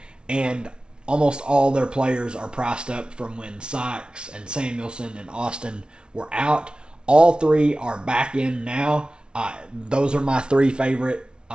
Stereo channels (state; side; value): late; left; 0.056 ms